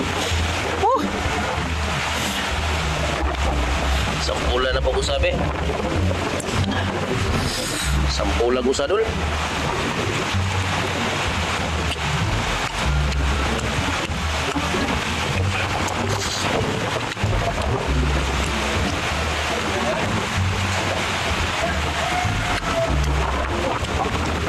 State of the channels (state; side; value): identical; both; correlation 1.00